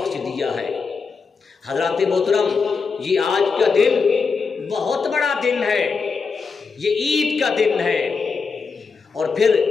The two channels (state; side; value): quieter; right; 5.1 dB